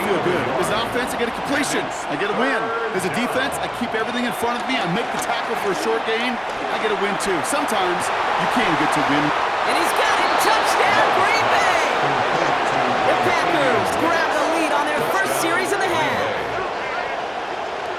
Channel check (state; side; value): identical; both; correlation 1.00